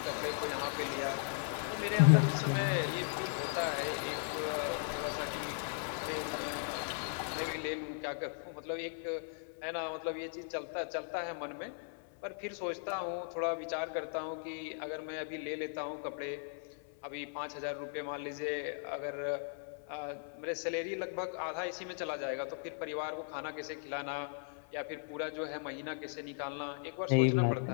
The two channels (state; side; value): silent; right; 53 dB below the other